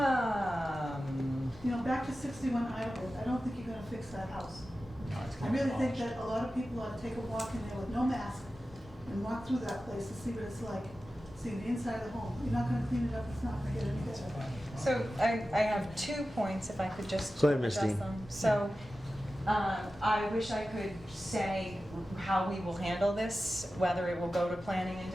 Back to 61 Idlewood, I don't think you're gonna fix that house. No, it's I gonna be really think demolished. that a lot of people ought to take a walk in there with no mask and walk through that place to see what it's like, see the inside of the home. You're not gonna clean it up, it's not gonna get any better. So I have 2 points, if I could just Go ahead, Ms. address Dean. them. So I wish I could say how we will handle this, whether it will go to planning and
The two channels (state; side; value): noise; left; rumble, 21 dB below the sound